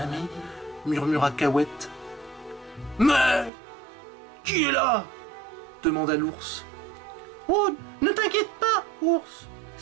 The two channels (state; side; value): drops out; left; at 3.5 s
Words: ami, murmura Cahuète. Mais qui est là? Demanda l'ours. Oh, ne t'inquiète pas, ours,